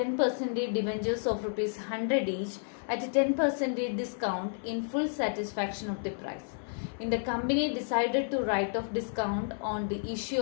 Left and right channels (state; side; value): silent; right; 57 dB below the other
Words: debentures of rupees 100 each at a 10% discount in full satisfaction of the price. In the company decided to write off discount on the